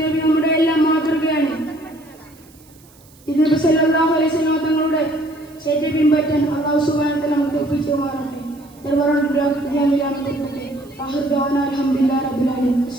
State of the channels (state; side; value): noise; right; hiss, 27 dB below the sound